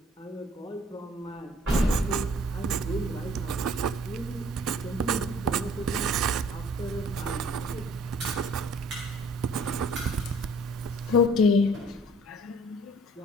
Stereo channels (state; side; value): normal; both; correlation 0.55